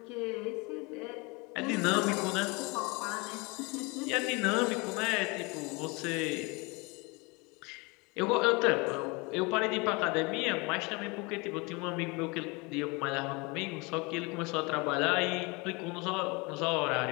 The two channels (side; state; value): right; quieter; 27.6 dB